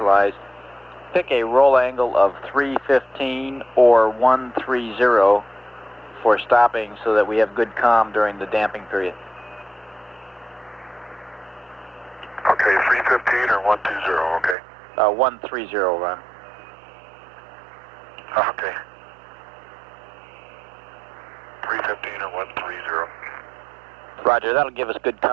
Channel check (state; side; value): drops out; left; at 14.6 s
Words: pick a roll angle of 315 or 130 for stopping so that we have good comm during the damping period. Okay, 315 or 120, okay. 130, Ron. Okay. 315 or 130. Roger, that'll give us good